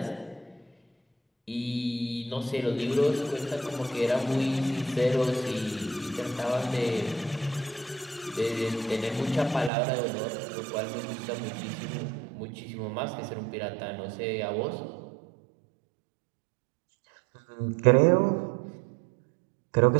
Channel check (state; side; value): drops out; left; at 9.7 s